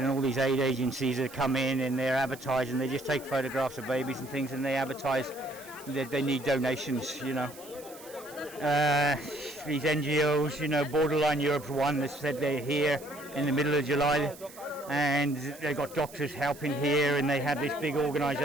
all these aid agencies that come in and they're advertising, they just take photographs of babies and things and they advertise that they need donations, you know. These NGOs, you know, Borderline Europe's one that said they're here in the middle of July and they've got doctors helping here and they have this big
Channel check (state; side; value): noise; right; hiss, 19 dB below the sound